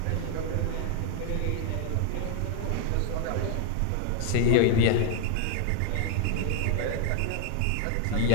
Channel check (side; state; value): both; different; correlation 0.00